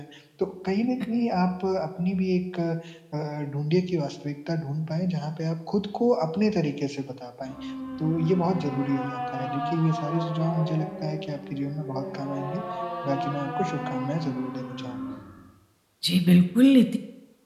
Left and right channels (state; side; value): identical; both; correlation 1.00